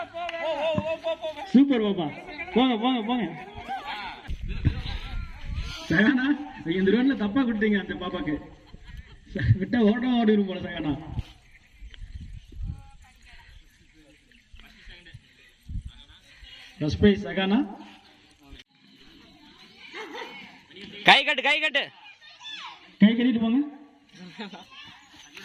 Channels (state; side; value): identical; both; correlation 1.00